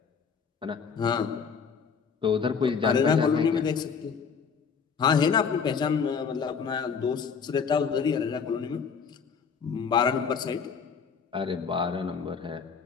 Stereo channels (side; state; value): right; quieter; 6.1 dB